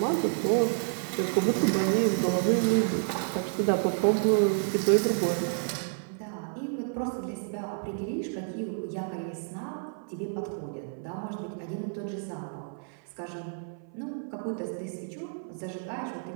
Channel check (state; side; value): silent; left; 58 dB below the other